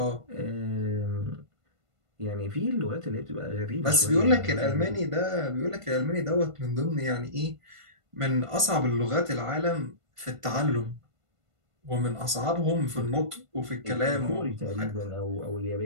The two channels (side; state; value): left; late; 1.5 ms